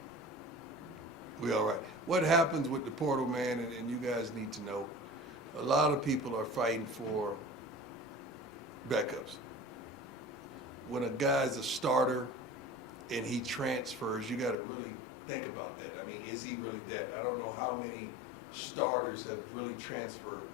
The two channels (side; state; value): right; drops out; at 14.6 s